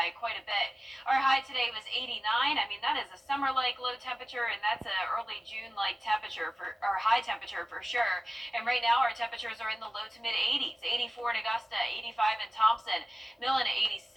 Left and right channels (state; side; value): normal; both; correlation 0.97